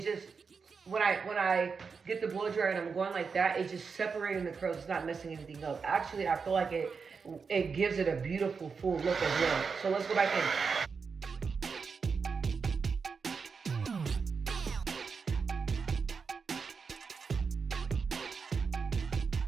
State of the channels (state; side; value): quieter; left; 5.4 dB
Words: just, when I get the blow dryer and I'm going like that, it's just separating the curls. It's not messing anything up. Actually, I feel like it gives it a beautiful full look as well. So let's go back in.